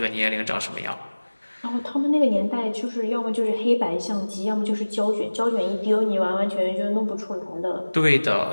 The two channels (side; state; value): both; inverted; correlation -1.00